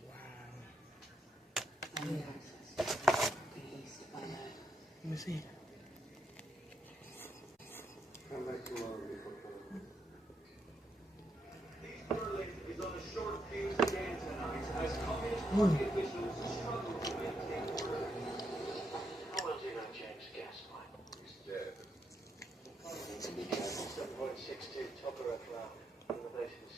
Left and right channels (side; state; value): both; normal; correlation 0.79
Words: Wow. I need access to the east if I know. Let me see. Come back tomorrow before coming. Berlin is on a short fuse again tonight as Communist Party officials struggle to maintain order. How well do you know James Gaslight? He's dead. 7.62 Tokarev round.